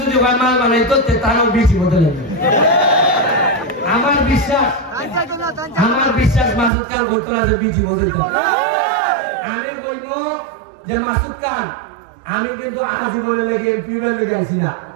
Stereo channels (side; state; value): left; drops out; at 6.7 s